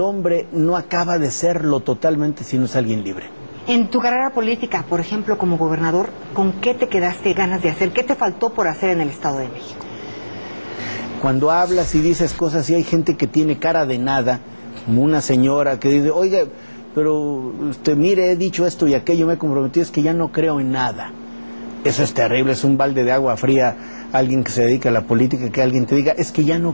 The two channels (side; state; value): both; inverted; correlation -1.00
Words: no acaba de serlo totalmente si no es alguien libre. En tu carrera política, por ejemplo, como gobernador, ¿con qué te quedaste ganas de hacer? ¿Qué te faltó por hacer en el Estado de México? Cuando hablas y dices cosas y hay gente que tiene cara de nada, como una señora que dice, oiga, pero mire, he dicho esto y aquello, me he comprometido, es que ya no creo en nada. Eso es terrible, es un balde de agua fría. Alguien que se dedica a la política, que alguien te diga, es que ya